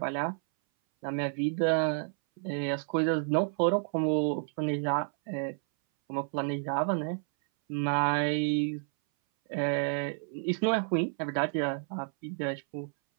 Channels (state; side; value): silent; left; 58 dB below the other